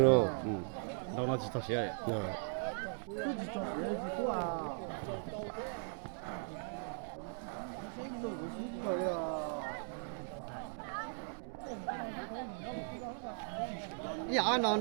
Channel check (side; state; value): left; silent; digital silence